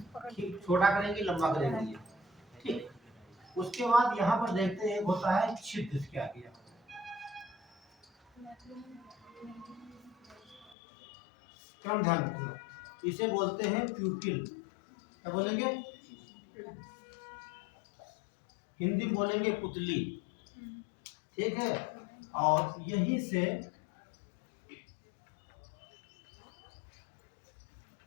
छोटा करेंगे, लंबा करेंगे। ठीक, उसके बाद यहाँ पर देखते हैं होता है छिद्र। क्या किया? क्रम ध्यान रखना, इसे बोलते हैं प्यूपिल। क्या बोलेंगे? हिंदी में बोलेंगे पुतली। ठीक है, और यहीं से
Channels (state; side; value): drops out; right; at 10.8 s